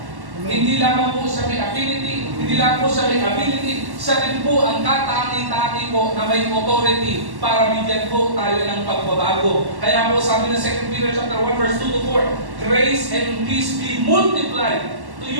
Hindi lamang po siya may affinity, hindi lang po siya may ability, siya rin po ang katangi-tangi po na may authority para bigyan po tayo ng pagbabago. Kaya po sabi ng 2 Peter chapter 1 verse 2 to 4, grace and peace be multiplied to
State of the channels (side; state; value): left; late; 1.1 ms